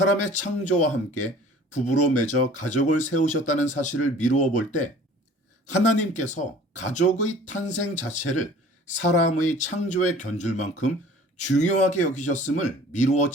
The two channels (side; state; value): both; normal; correlation 0.48